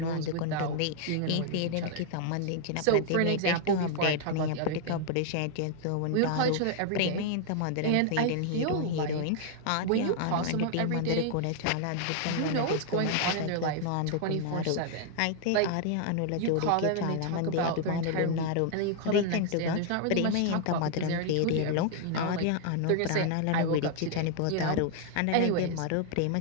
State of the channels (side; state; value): both; different; correlation -0.01